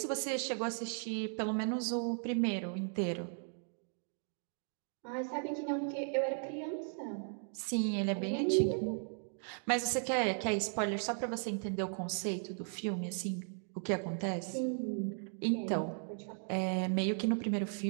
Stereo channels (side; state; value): left; silent; 53 dB below the other